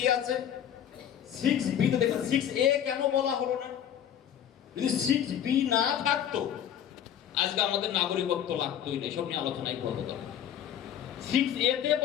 আছে? 6B তে দেখুন 6A কেন বলা হলো না? যদি 6B না থাকতো আজকে আমাদের নাগরিকত্ব লাগতোই না, এসব নিয়ে আলোচনাই করবো। 6A তে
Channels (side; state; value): right; quieter; 9.8 dB